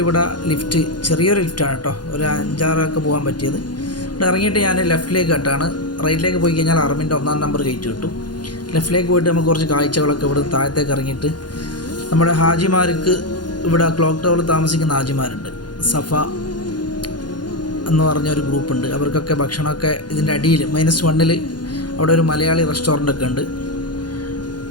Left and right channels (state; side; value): late; right; 0.70 ms